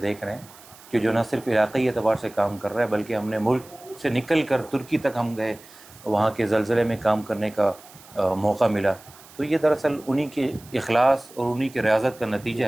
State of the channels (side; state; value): right; noise; hiss, 22 dB below the sound